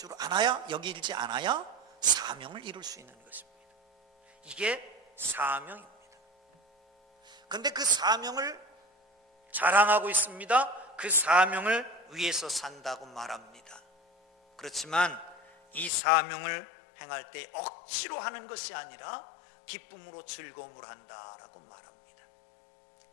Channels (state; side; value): drops out; right; at 15.9 s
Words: 않아야 사명을 이룰 수 있는 것입니다. 이게 사명입니다. 그런데 그 사명을 자랑하고 있습니다. 그 사명을 위해서 산다고 말합니다. 그렇지만 이 사명을 행할 때 억지로 하는 것이 아니라 기쁨으로 즐거움으로 한다라고 말합니다.